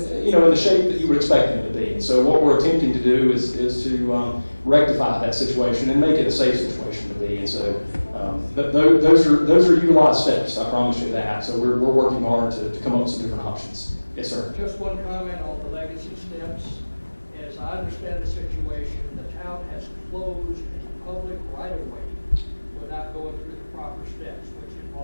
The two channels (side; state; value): both; inverted; correlation -1.00